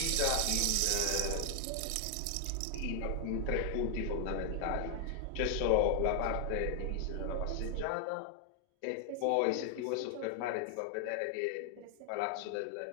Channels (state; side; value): different; both; correlation 0.00